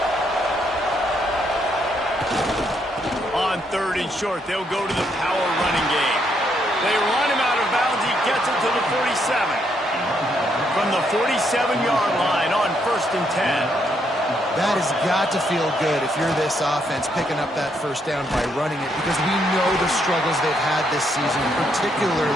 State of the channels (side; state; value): both; normal; correlation 0.75